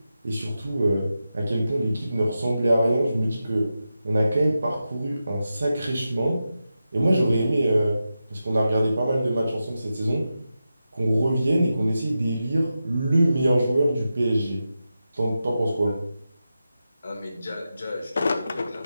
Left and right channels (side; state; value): both; inverted; correlation -0.91